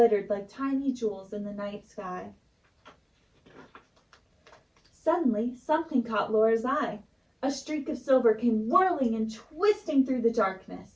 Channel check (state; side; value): identical; both; correlation 1.00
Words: like tiny jewels in the night sky. Suddenly, something caught Laura's eye. A streak of silver came whirling and twisting through the darkness.